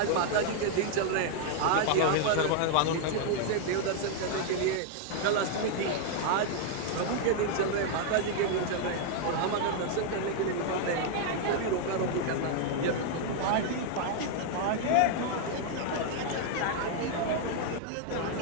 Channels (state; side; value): different; both; correlation 0.00